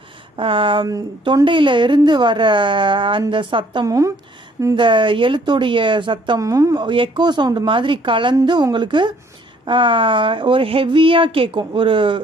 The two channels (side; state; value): both; normal; correlation 0.62